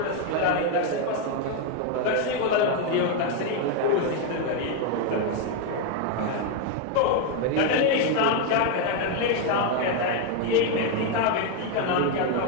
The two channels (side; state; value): both; different; correlation 0.01